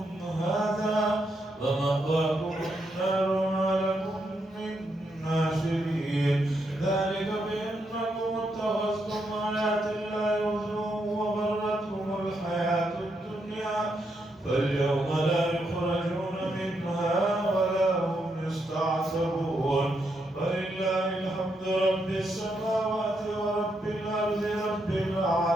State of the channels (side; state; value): both; normal; correlation 0.80